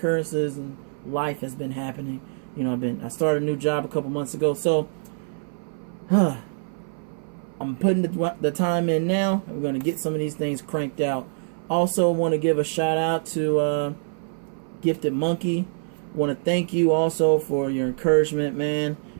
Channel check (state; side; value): silent; left; 58 dB below the other